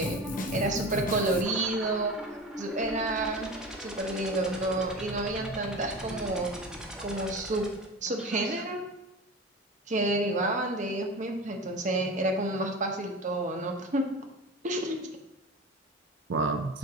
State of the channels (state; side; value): normal; both; correlation 0.31